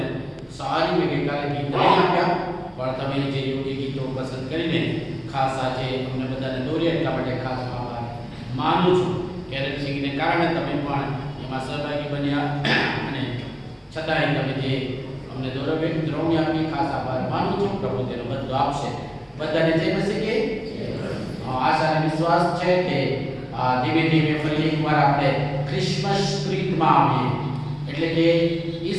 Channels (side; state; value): both; identical; correlation 1.00